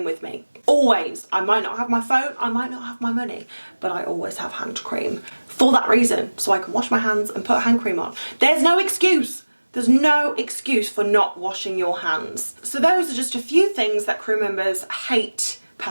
with me. Always. I might not have my phone, I might not have my money, but I always have hand cream for that reason, so I can wash my hands and put hand cream on. There's no excuse. There's no excuse for not washing your hands. So those are just a few things that crew members hate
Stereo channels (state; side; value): inverted; both; correlation -1.00